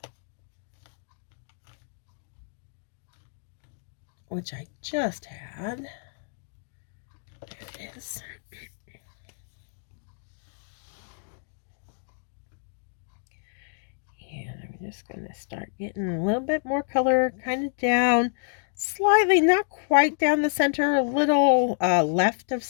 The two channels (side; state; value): right; silent; digital silence